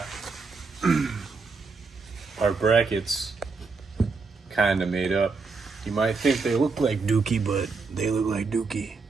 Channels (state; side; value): quieter; left; 4.4 dB